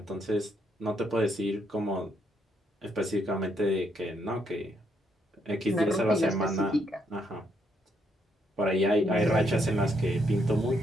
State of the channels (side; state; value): both; normal; correlation 0.75